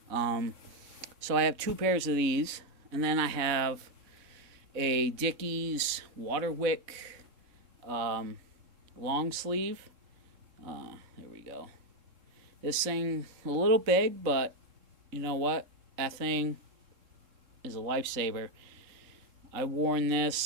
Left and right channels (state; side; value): late; left; 3.7 ms